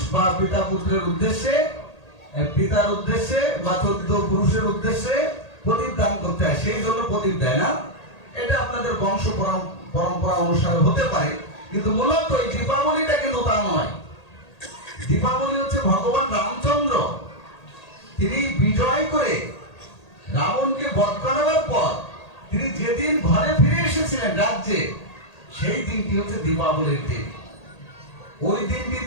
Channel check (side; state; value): right; late; 1.8 ms